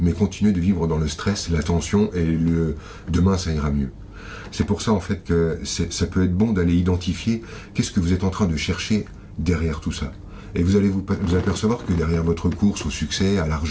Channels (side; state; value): both; identical; correlation 1.00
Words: continuer de vivre dans le stress, la tension et le demain ça ira mieux. C'est pour ça en fait que ça peut être bon d'aller identifier qu'est-ce que vous êtes en train de chercher derrière tout ça. Et vous allez vous apercevoir que derrière votre course au succès, à